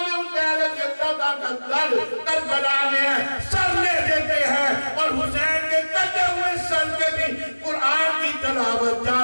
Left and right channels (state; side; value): inverted; both; correlation -1.00